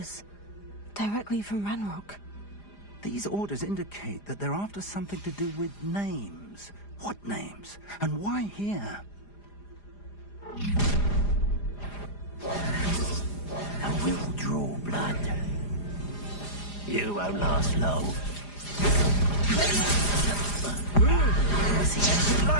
Directly from Ranrock. These orders indicate that they're after something to do with names. What names? And why here? And we'll draw blood. You won't last long. See anything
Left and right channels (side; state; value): right; late; 4.9 ms